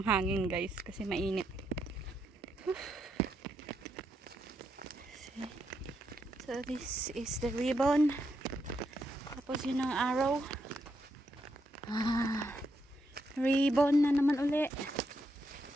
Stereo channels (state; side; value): normal; both; correlation 0.80